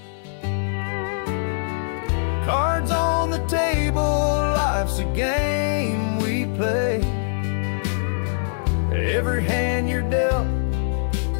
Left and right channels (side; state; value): right; silent; digital silence